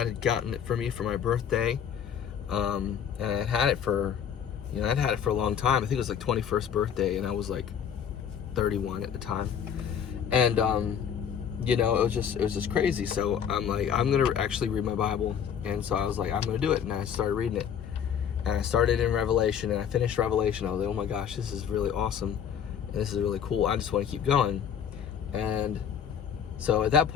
had gotten it for me for my birthday, and I'd had it for a long time. I think it was like 21st birthday, and I was like 31 at the time. And it was just crazy. So I'm like, I'm gonna actually read my Bible, and so I was like, I'm gonna do it, and I started reading it. And I started in Revelation, and I finished Revelation. I was like, oh my gosh, this is really awesome, and this is really cool. I just want to keep going. And so at that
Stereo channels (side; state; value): right; quieter; 8.2 dB